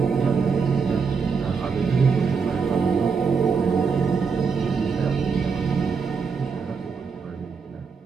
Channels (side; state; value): left; quieter; 5.5 dB